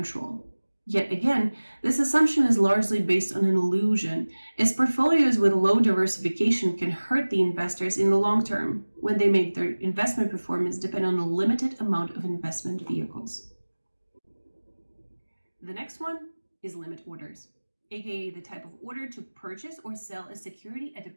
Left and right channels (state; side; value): inverted; both; correlation -1.00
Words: Yet again, this assumption is largely based on an illusion, as portfolios with low diversification can hurt the investors in the long term when they make their investment performance depend on a limited amount of investment vehicles. The next one is limit orders, aka the type of order to purchase or sell a security at a